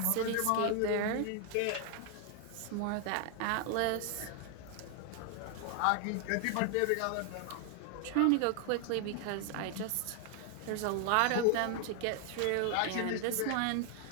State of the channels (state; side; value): different; both; correlation 0.01